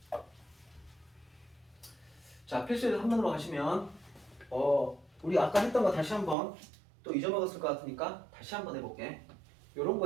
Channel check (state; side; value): drops out; left; at 6.4 s